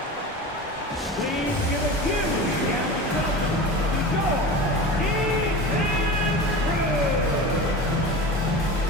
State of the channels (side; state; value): both; normal; correlation 0.31